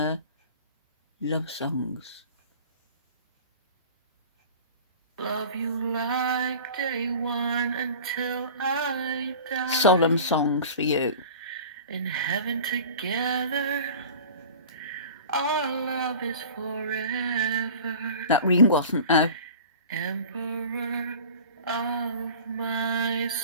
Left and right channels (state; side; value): inverted; both; correlation -0.40